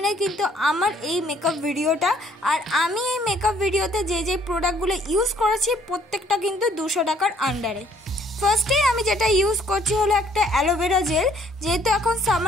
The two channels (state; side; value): normal; both; correlation 0.62